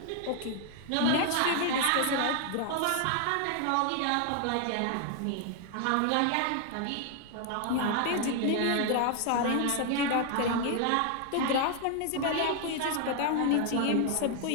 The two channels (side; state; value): both; different; correlation 0.00